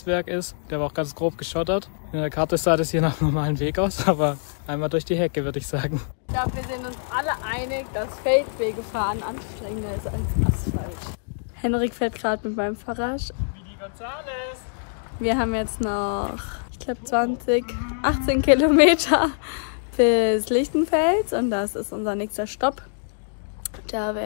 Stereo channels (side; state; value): right; silent; digital silence